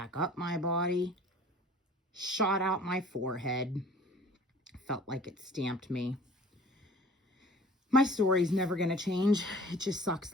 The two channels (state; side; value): normal; both; correlation 0.48